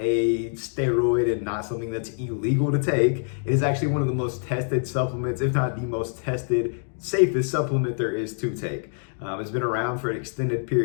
steroid and not something that's illegal to take. It is actually one of the most tested supplements, if not the most tested, safest supplement there is to take. It's been around for an extended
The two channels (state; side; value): silent; right; 62 dB below the other